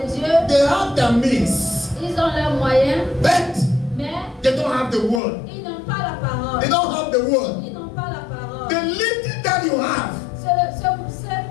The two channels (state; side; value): drops out; right; at 5.2 s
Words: Dieu, they have the means, ils ont leurs moyens, but mais they don't have the word. ils n'ont pas la parole. They don't have the word. Ils n'ont pas la parole. The little that you have